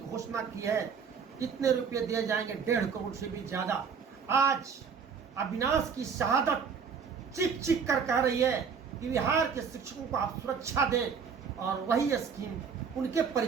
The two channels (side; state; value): left; quieter; 6.2 dB